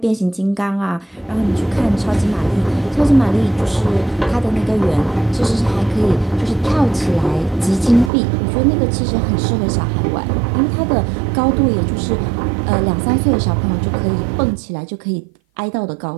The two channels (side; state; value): left; drops out; at 8.1 s